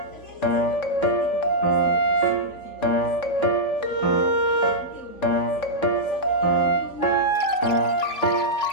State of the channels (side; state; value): right; late; 3.5 ms